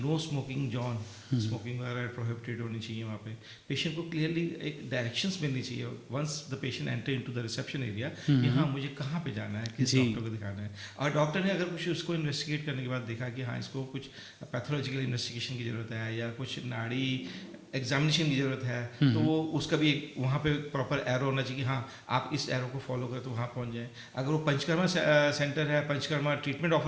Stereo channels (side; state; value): both; identical; correlation 1.00